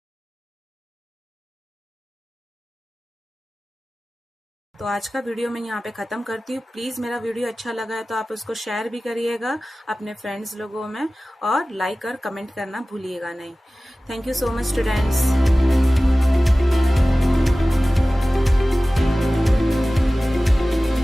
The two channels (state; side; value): normal; both; correlation 0.97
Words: तो आज का वीडियो मैं यहाँ पे खत्म करती हूँ। प्लीज मेरा वीडियो अच्छा लगा है तो आप उसको शेयर भी करिएगा अपने फ्रेंड्स लोगों में, और लाइक और कमेंट करना भूलिएगा नहीं। Thank you so much students.